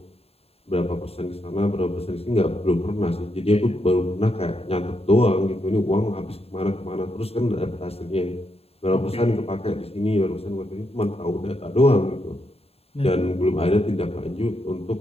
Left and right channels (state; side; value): late; right; 0.29 ms